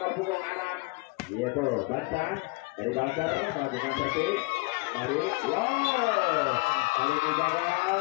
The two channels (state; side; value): quieter; right; 26.8 dB